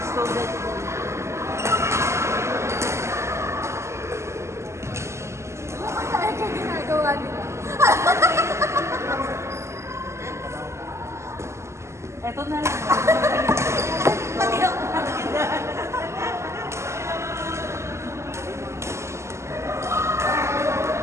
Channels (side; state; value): left; late; 0.13 ms